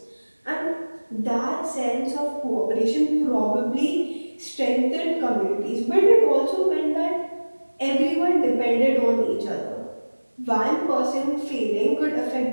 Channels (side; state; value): both; inverted; correlation -1.00